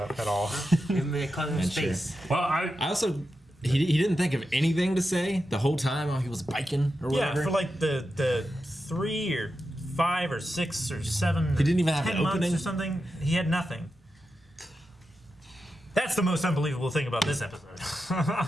at all. Give him cause him space. Well, I also he didn't think of anything to say the whole time while he was biking or whatever. Yeah, for like the 3 or 5 or 6 or 7. He didn't even have 10 an months opening? or something. He had nothing. That's the most unbelievable thing about this episode. Well,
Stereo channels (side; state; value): both; normal; correlation 0.89